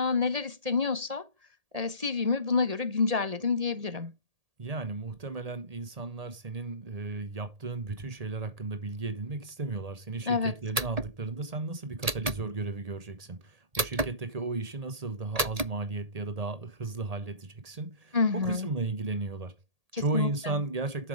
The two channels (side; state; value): left; late; 1.8 ms